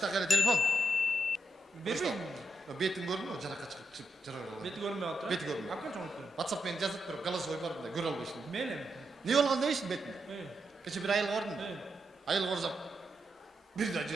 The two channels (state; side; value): normal; both; correlation 0.84